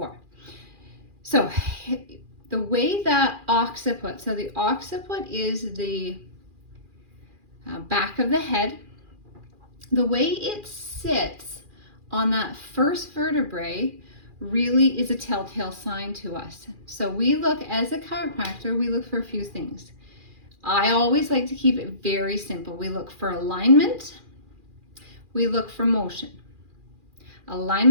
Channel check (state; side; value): late; left; 2.4 ms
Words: So the way that occiput, so the occiput is the back of the head. The way it sits on that first vertebrae really is a telltale sign to us. So we look, as a chiropractor, we look for a few things. I always like to keep it very simple. We look for alignment, we look for motion.